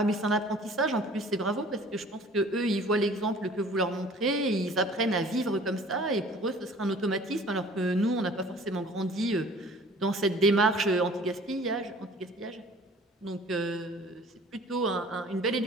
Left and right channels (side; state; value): both; normal; correlation 0.49